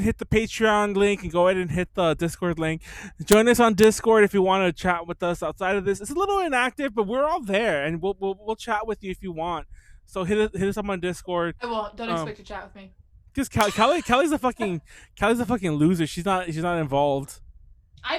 hit the Patreon link and go ahead and hit the Discord link. Join us on Discord if you want to chat with us outside of this. It's a little inactive, but we're all there, and we'll chat with you if you want. So hit us up on Discord. I won't. Don't expect to chat with me. Because Callie's a fucking loser. She's not involved.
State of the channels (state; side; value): identical; both; correlation 1.00